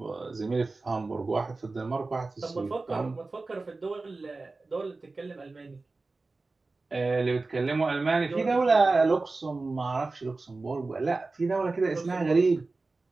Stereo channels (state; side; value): quieter; left; 3.6 dB